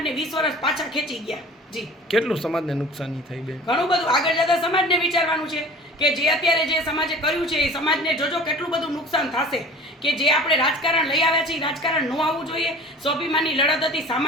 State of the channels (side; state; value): both; normal; correlation 0.43